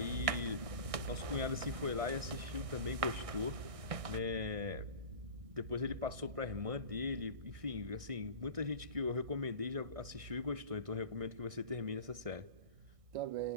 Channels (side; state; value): left; late; 1.6 ms